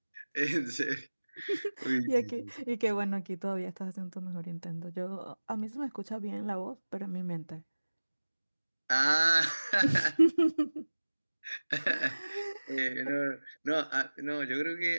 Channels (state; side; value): inverted; both; correlation -1.00